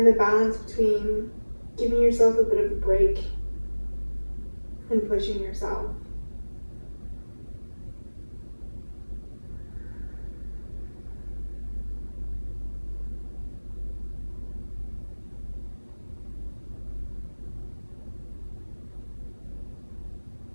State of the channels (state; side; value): inverted; both; correlation -1.00